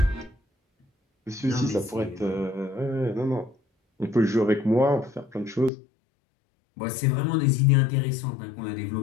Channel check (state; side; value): drops out; right; at 5.7 s